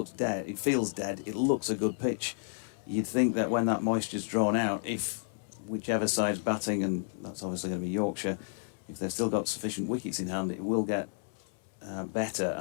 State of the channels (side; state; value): right; silent; 57 dB below the other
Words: dead, it feels dead, it looks a good pitch. You'd think that when that moisture's drawn out, if whichever side's batting, and that's obviously going to be Yorkshire, if they've still got sufficient wickets in hand, it will get better,